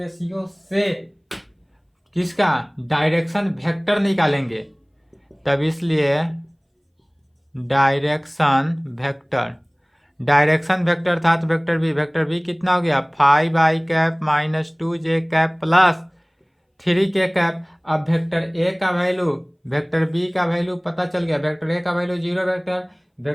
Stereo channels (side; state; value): both; identical; correlation 1.00